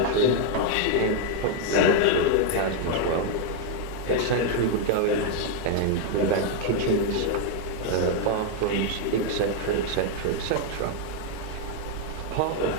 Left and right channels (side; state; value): both; different; correlation 0.00